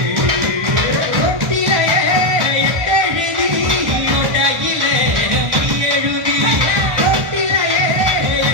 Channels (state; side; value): late; left; 1.1 ms